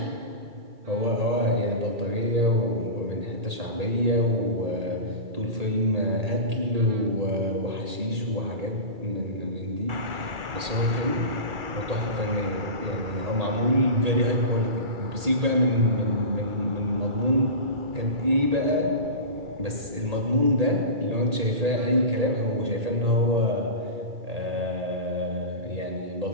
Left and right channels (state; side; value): late; left; 2.3 ms